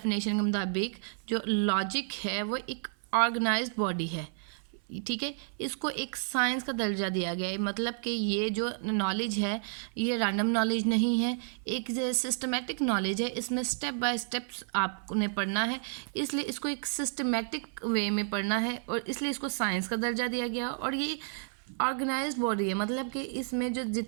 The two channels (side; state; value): left; silent; 56 dB below the other